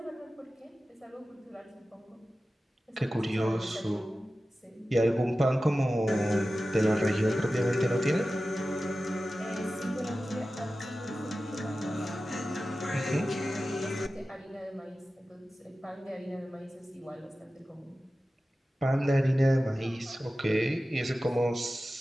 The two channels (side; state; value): both; normal; correlation 0.95